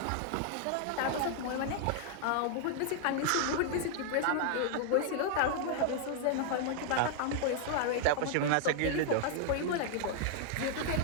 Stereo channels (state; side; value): different; both; correlation 0.00